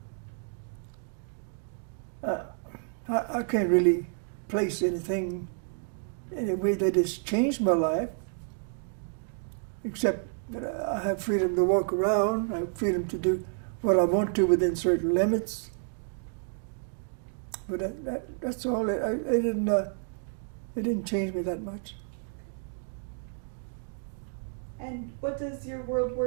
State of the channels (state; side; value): silent; left; 58 dB below the other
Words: I can't really place anything in a way that has changed my life, except that I have freedom to walk around, I have freedom to do what I want to within certain limits. But that's all. It didn't change me that much. And what does your World